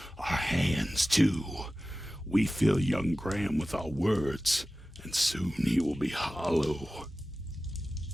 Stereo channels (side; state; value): both; normal; correlation 0.95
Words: our hands too. We fill young Graham with our words, and soon he will be hollow.